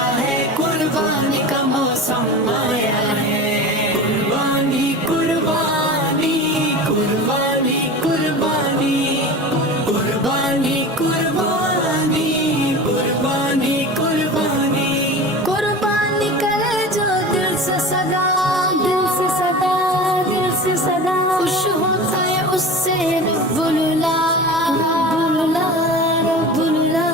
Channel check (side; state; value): both; normal; correlation 0.33